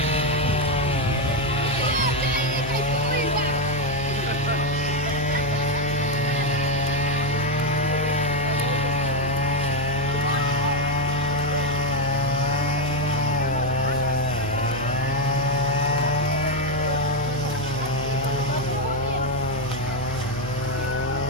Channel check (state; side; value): noise; right; hum, 9 dB below the sound